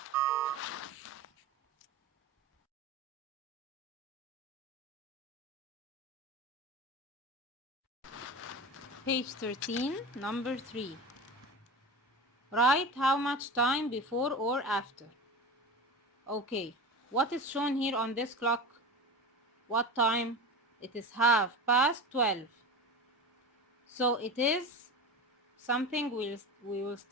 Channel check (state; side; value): normal; both; correlation 0.29